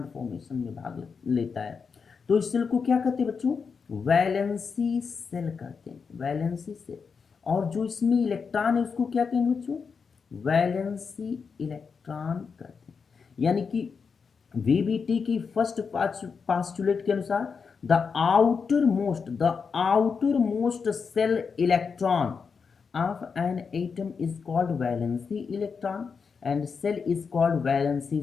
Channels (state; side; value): quieter; right; 5.6 dB